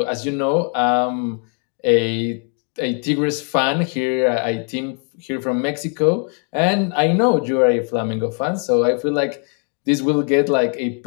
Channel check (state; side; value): quieter; right; 39.1 dB